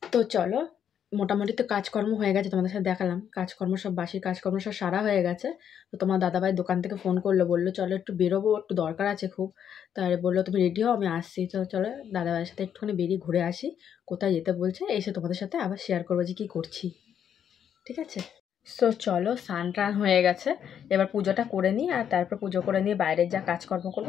তো চলো, মোটামুটি তো কাজকর্ম হয়ে গেছে, তোমাদের সাথে দেখালাম কাজকর্ম সব, বাসি কাজকর্ম সব সারা হয়ে গেছে। তো তোমার দাদাভাই দোকান থেকে ফোন করলো, বললো চলো একটু বেরোবো, একটু দরকার আছে খুব। তাই বললো তুমি রেডি হও, আমি আসছি। তো চলো দাদাভাইয়ের সাথে একটুখানি বেরিয়ে ঘুরে আসি, কোথায় যেতে বলছে এসে তোমাদের সাথে আবার শেয়ার করবো যে কী করছি, ঠিক আছে? তো চলো, স্নান টান হয়ে গেছে, এবার পুজোটা করে নিই, আর তারপর পুজো করে নিয়ে বাইরের যা কাজকর্ম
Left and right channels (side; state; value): right; quieter; 8.7 dB